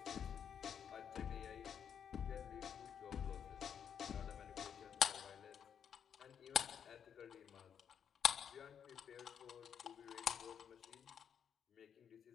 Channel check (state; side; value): quieter; right; 8.1 dB